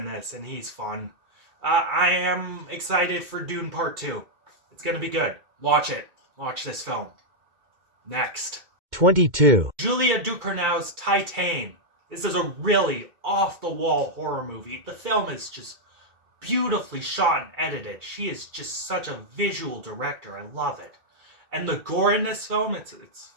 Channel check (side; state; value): left; late; 2.4 ms